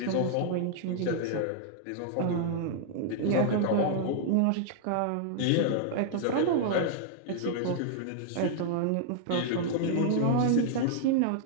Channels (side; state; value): both; different; correlation -0.01